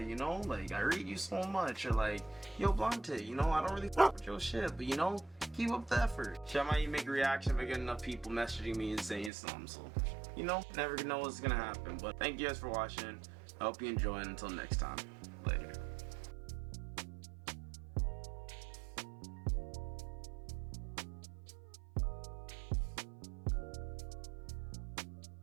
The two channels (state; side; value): drops out; left; at 9.3 s